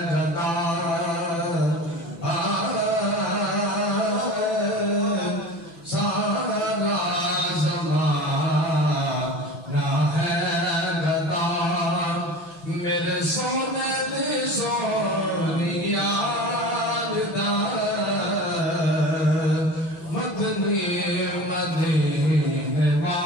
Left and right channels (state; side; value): late; right; 6.0 ms